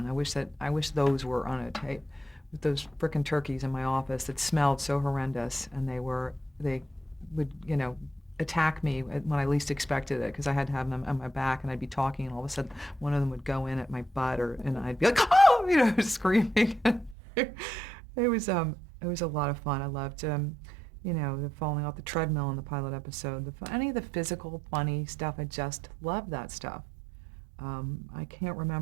I wish those were on a tape. With those frickin' turkeys in my office that smelled so horrendous, and they would, attack me when I least expected it, because I had to have them on my back, and I'd be talking, and all of a sudden one of them would go in at my butt, and I'd be like, oh, screaming. It was a lot of fun. I loved the falling off the treadmill in the pilot episode. Any of the physical funny stuff, I just loved that stuff. I can't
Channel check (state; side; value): drops out; left; at 17.2 s